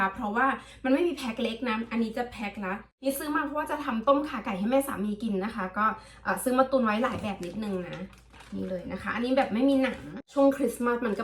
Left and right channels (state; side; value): identical; both; correlation 1.00